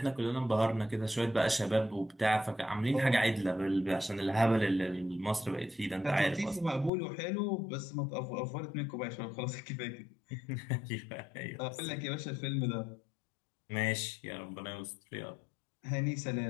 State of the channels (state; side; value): drops out; right; at 6.9 s